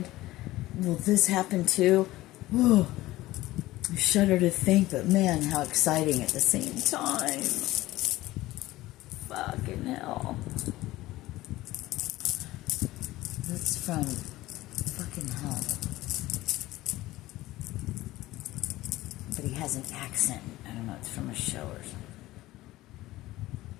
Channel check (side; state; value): right; quieter; 17.2 dB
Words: Will this happen too? Whew. I shudder to think, but man, how exciting at the same time. Fucking hell. That's from fucking hell. But he has an accent. I don't know, it's from a show or something.